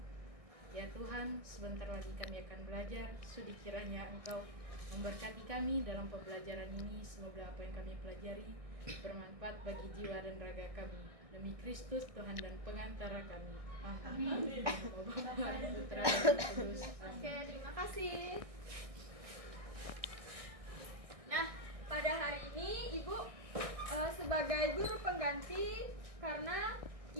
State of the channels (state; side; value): late; left; 1.6 ms